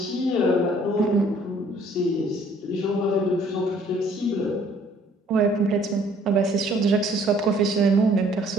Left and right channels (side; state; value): both; normal; correlation 0.59